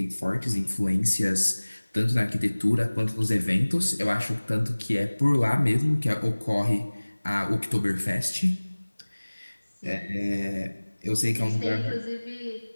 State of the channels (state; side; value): inverted; both; correlation -1.00